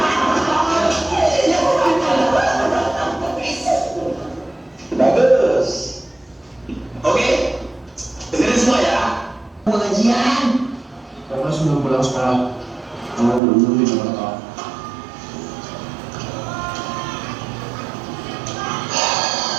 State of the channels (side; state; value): left; drops out; at 13.4 s